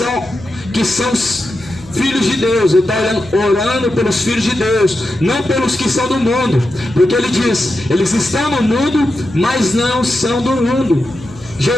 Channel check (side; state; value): left; noise; hum, 20 dB below the sound